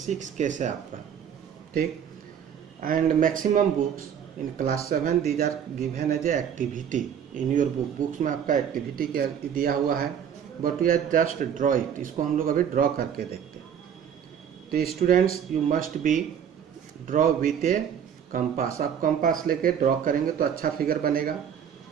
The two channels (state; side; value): quieter; left; 8.4 dB